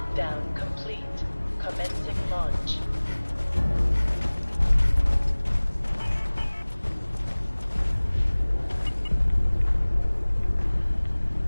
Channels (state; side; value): inverted; both; correlation -1.00